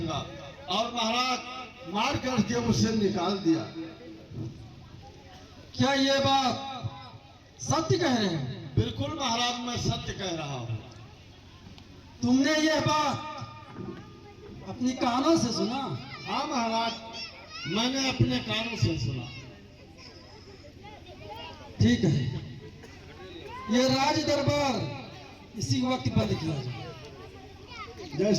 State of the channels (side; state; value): both; identical; correlation 1.00